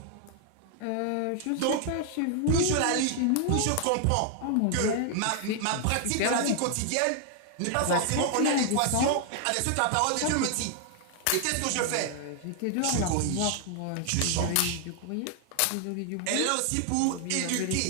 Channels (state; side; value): different; both; correlation 0.00